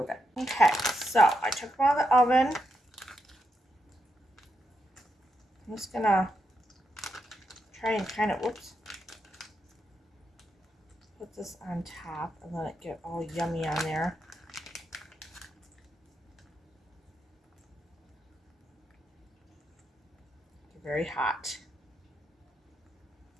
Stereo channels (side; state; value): both; normal; correlation 0.83